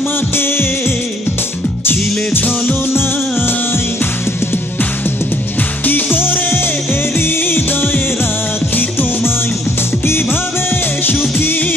ছিলে ছলনায়। কি করে হৃদয়ে রাখি তোমায়, কিভাবে সুখী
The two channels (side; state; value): both; normal; correlation 0.63